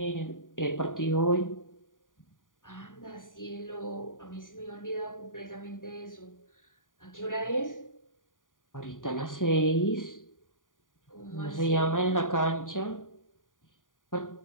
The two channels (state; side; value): late; right; 0.89 ms